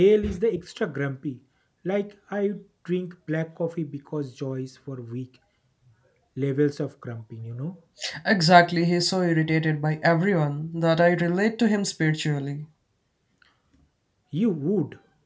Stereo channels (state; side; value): identical; both; correlation 1.00